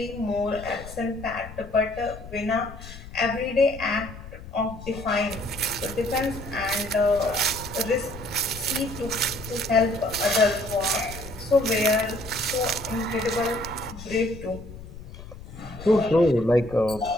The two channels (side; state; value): left; noise; rumble, 14 dB below the sound